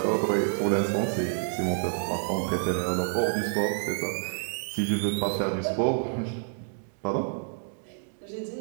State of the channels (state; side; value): silent; left; digital silence